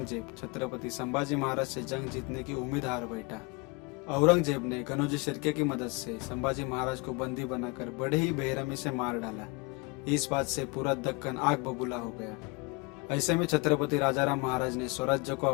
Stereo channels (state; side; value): quieter; right; 28.5 dB